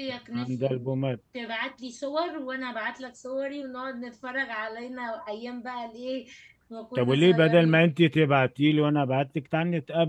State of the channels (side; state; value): both; identical; correlation 1.00